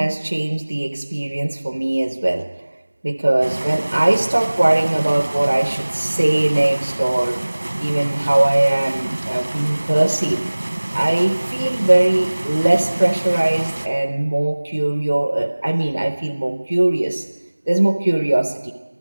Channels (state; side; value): inverted; both; correlation -1.00